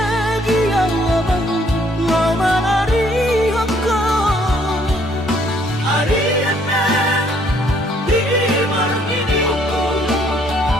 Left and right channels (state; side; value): normal; both; correlation 0.65